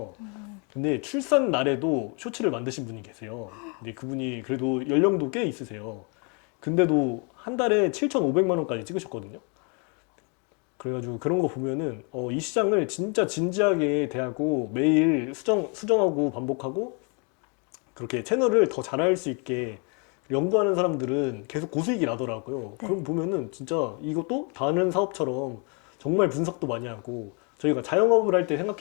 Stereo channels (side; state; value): right; quieter; 35.4 dB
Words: 근데 출산 날에도 쇼츠를 만드신 분이 계세요. 근데 그분이 그래도 연령도 꽤 있으세요. 근데도 한 달에 7,500만 원까지 찍으셨거든요. 그래가지고 그런 거 보면은 이 시장을 진짜 진지하게 대하고 매일 수정하고 반복하고 그렇게 채널을 더 잘할 수 있게 연구하는 사람들은 계속 고수익이 나더라고요. 네. 그런 거 보면은 진짜 이것도 다른 사업처럼 정말 분석도 많이 하고 저희가 자영업을 할 때